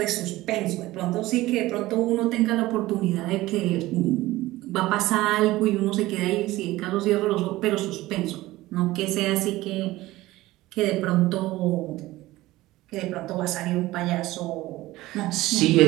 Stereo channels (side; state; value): left; quieter; 17.7 dB